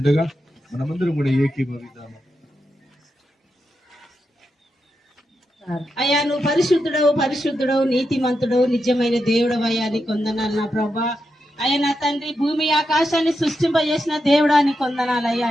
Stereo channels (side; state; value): both; normal; correlation 0.86